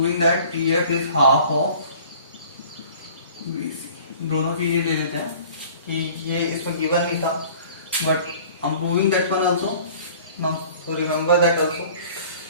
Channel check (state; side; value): inverted; both; correlation -0.48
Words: that EF is half of BC. दोनों चीजें ले लेते हैं कि ये इसमें गिवन नहीं था, but I am proving that one also now, so remember that also.